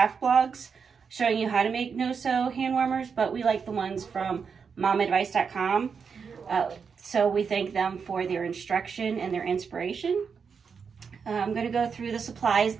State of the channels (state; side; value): quieter; left; 6.0 dB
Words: blogs showing you how to make no-sew hand warmers, but we like the ones from momadvice.com. So we thank them for their instruction and their inspiration. I'm going to go through the supplies.